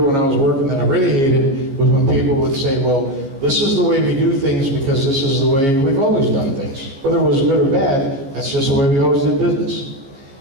I was working that I really hated was when people would say, well, this is the way we do things because this is the way we've always done things. Whether it was good or bad, that's just the way we always did business.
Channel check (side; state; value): left; late; 15 ms